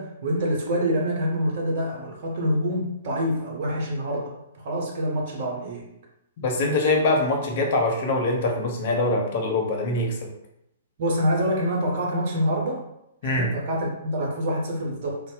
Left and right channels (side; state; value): both; inverted; correlation -0.46